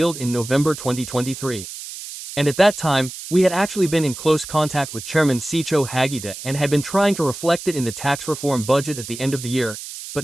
in November 2023. And at that time, we had actually been in close contact with Chairman Seicho Hagita and had been trying to reflect it in the tax reform budget at the end of the year,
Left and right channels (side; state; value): right; noise; hiss, 11 dB below the sound